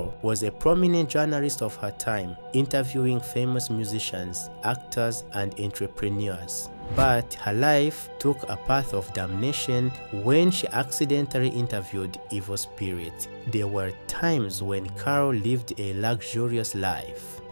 was a prominent journalist of her time, interviewing famous musicians, actors, and entrepreneurs. But her life took a path of damnation when she accidentally interviewed evil spirits. There were times when Carol lived a luxurious life.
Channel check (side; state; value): both; inverted; correlation -1.00